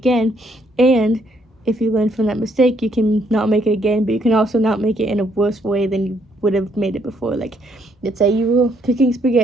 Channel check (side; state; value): both; normal; correlation 0.70